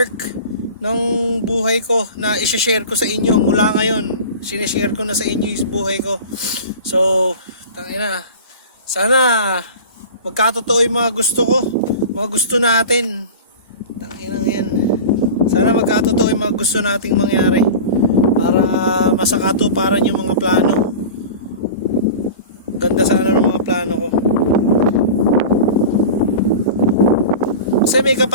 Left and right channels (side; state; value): both; inverted; correlation -0.34